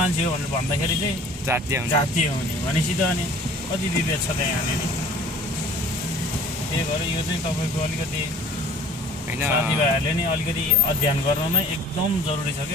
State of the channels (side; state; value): both; normal; correlation 0.49